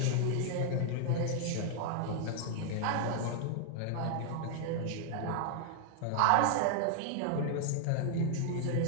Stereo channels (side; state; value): both; different; correlation 0.00